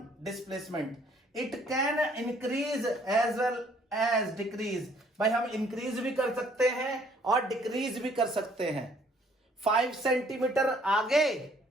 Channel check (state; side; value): normal; both; correlation 0.62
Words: Displacement. It can increase as well as decrease. भाई हम इंक्रीज भी कर सकते हैं और डिक्रीज भी कर सकते हैं। 5 सेंटीमीटर आगे,